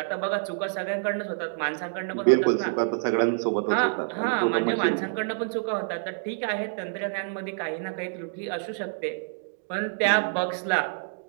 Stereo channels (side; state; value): left; silent; digital silence